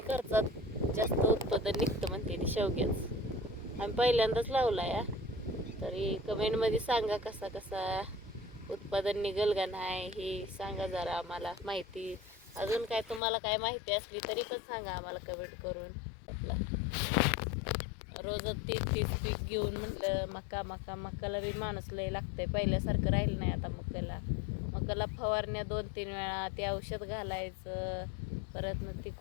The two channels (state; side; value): drops out; right; at 13.2 s